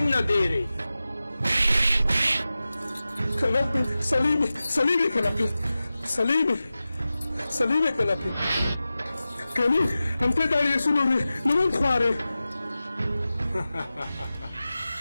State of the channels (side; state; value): both; inverted; correlation -0.95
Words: देरी कनापी सलीमी सलीमी कनापी सलीमी सलीमी कनापी कनी अंते दाड़ी सुनोरे नमन ख्वारे